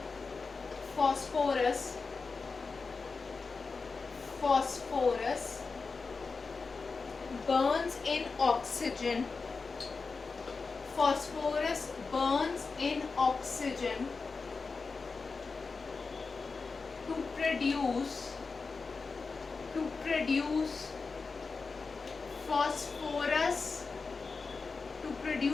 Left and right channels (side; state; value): right; quieter; 4.4 dB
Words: phosphorus. Phosphorus burns in oxygen. Phosphorus burns in oxygen to produce phosphorus